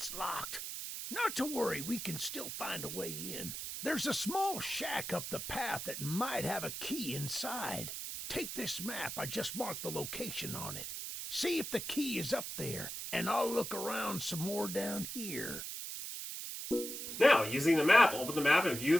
locked. Not to worry, we can still find a way in. There's a small shack up the path that might have a key inside. Take this map. I just marked the location on it. See if the key is up there, and I'll look around some more down here. Now, using the map, open the map and view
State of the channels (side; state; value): right; noise; hiss, 6 dB below the sound